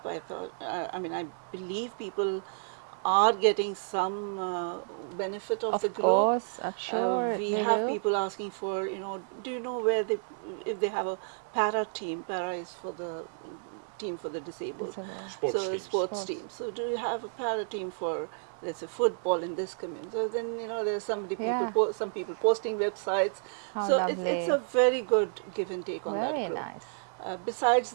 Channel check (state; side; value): silent; left; digital silence